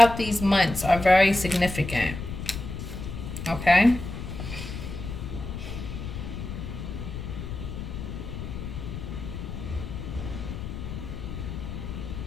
these months are very significant. Okay.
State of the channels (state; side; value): noise; left; rumble, 7 dB below the sound